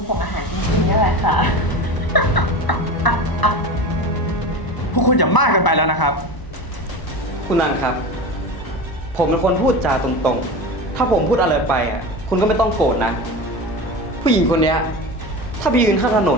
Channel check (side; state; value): right; late; 1.0 ms